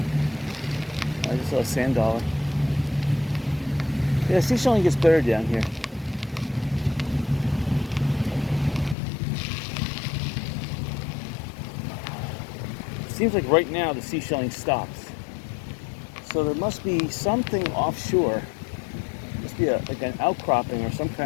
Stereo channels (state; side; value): drops out; right; at 9.0 s